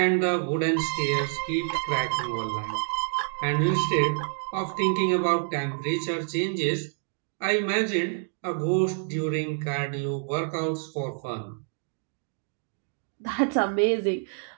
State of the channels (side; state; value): left; silent; 60 dB below the other